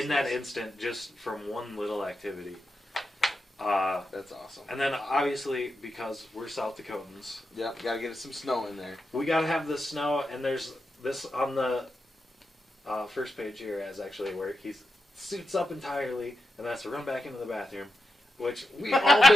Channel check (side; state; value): both; normal; correlation 0.88